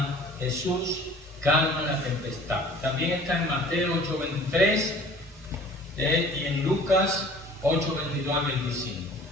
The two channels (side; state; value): both; normal; correlation 0.49